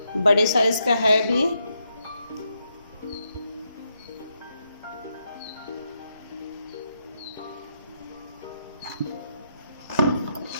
बड़े साइज़ का है भी।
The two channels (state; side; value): inverted; both; correlation -0.81